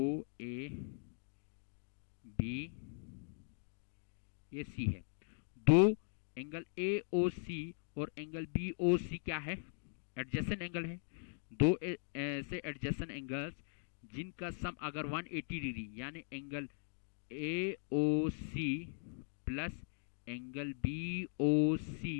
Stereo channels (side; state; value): right; silent; digital silence